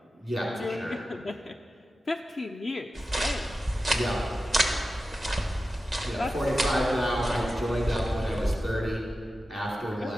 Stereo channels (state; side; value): normal; both; correlation 0.93